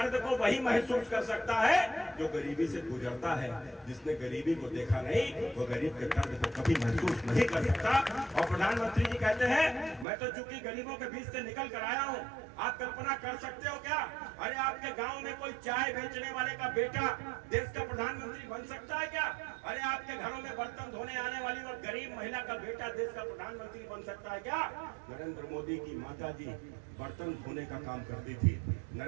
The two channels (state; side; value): drops out; left; at 10.1 s